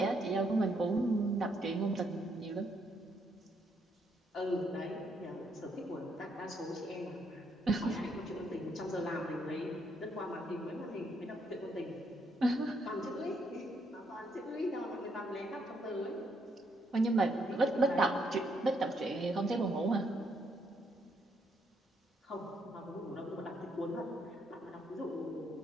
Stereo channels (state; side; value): normal; both; correlation 0.74